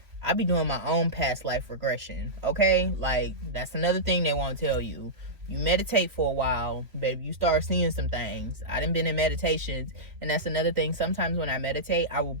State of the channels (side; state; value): left; late; 2.9 ms